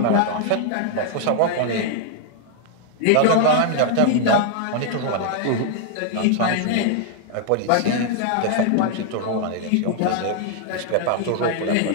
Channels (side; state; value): both; different; correlation 0.00